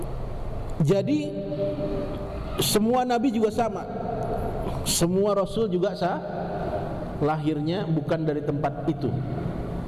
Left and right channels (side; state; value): both; identical; correlation 1.00